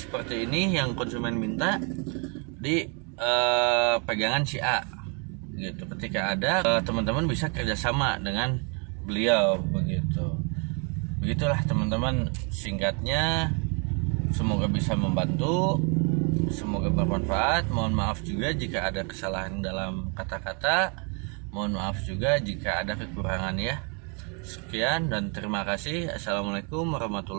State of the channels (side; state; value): left; quieter; 35.8 dB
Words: ini yang konsumen minta di pegangan si A gitu. Ketika ada, teman-teman bisa kerjasama dengan beliau begitu. Begitulah teman-teman, singkatnya. Semoga bisa membantu, semoga bermanfaat. Mohon maaf juga jika ada kesalahan dalam kata-kata, mohon maaf juga jika ada kekurangan ya. Sekian dan terima kasih. Assalamualaikum